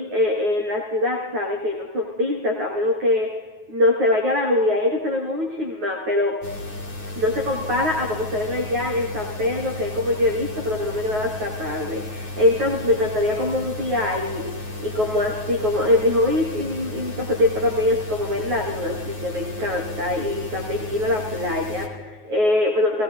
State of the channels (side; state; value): left; late; 9.4 ms